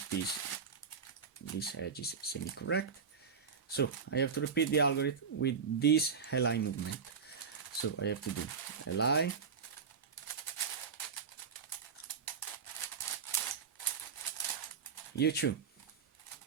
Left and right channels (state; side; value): quieter; left; 6.0 dB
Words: piece, this edge is semi-correct. So I have to repeat the algorithm with this Li movement. So I have to do Li, U2,